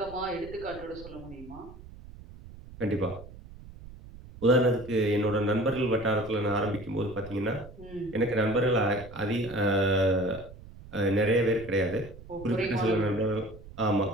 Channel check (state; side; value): noise; right; rumble, 17 dB below the sound